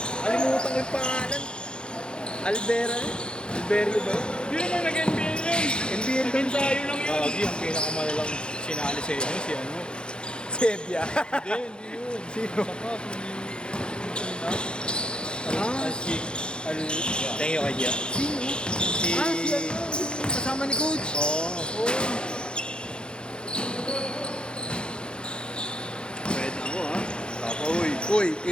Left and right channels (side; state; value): right; late; 0.051 ms